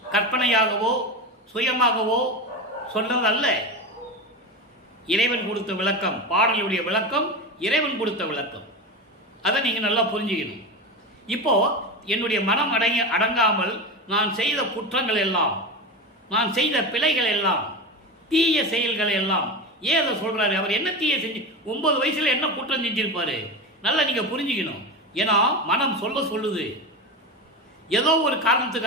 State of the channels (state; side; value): normal; both; correlation 0.23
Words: கற்பனையாகவோ சுயமாகவோ சொன்னதல்ல. இறைவன் கொடுத்த விளக்கம், பாடலுடைய விளக்கம் இறைவன் கொடுத்த விளக்கம். அதை நீங்க நல்லா புரிஞ்சுக்கணும். இப்போ என்னுடைய மனம் அடங்காமல் நான் செய்த குற்றங்கள் எல்லாம், நான் செய்த பிழைகள் எல்லாம், தீய செயல்கள் எல்லாம், ஏன் அதை சொல்றாரு? அவர் என்ன தீய செஞ்சு 9 வயசுல என்ன குற்றம் செஞ்சிருப்பாரு? நல்லா நீங்க புரிஞ்சுக்கணும். ஏன்னா மனம் சொல்லுது. ஏதோ ஒரு